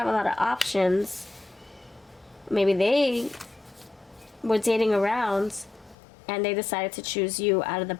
a lot of options. Maybe they were dating around and they decided to choose you out of the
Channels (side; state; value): right; drops out; at 6.0 s